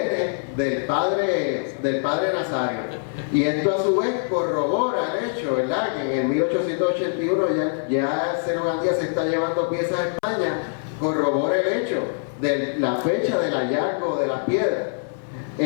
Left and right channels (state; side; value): silent; right; 59 dB below the other